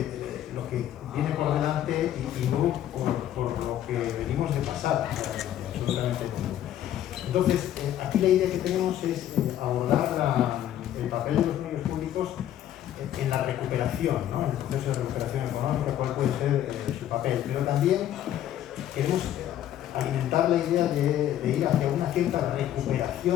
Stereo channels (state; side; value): quieter; right; 11.6 dB